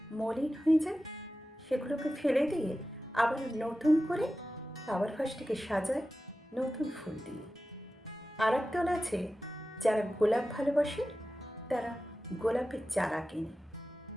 মলিন হয়ে যায়, সেগুলোকে ফেলে দিয়ে আবার নতুন করে ফ্লাওয়ার ভাসটিকে সাজায় নতুন ফুল দিয়ে। আর একদল আছে যারা গোলাপ ভালোবাসে, তারা গোলাপের চারা কেনে।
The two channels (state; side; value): normal; both; correlation 0.94